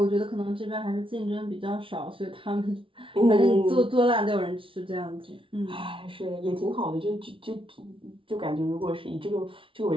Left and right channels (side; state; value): left; late; 0.25 ms